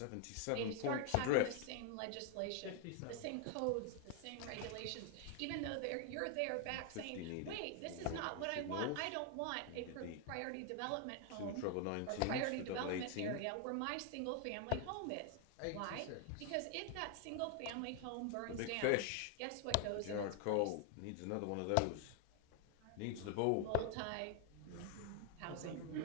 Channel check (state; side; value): different; both; correlation 0.00